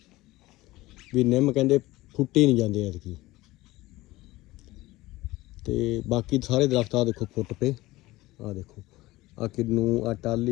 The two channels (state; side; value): quieter; right; 18.7 dB